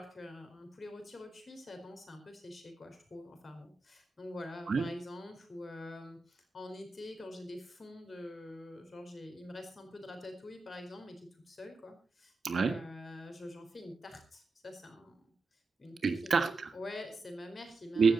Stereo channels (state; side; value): quieter; left; 3.9 dB